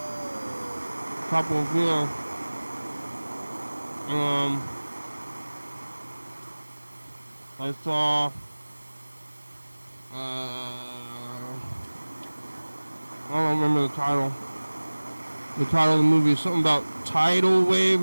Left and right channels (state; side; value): inverted; both; correlation -1.00